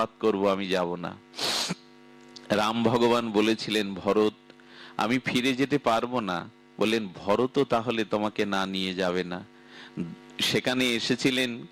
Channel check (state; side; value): identical; both; correlation 1.00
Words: করব, আমি যাব না। রাম ভগবান বলেছিলেন, ভরত আমি ফিরে যেতে পারবো না। বললেন, ভরত তাহলে তোমাকে না নিয়ে যাবে না। সেখানে এসেছিলেন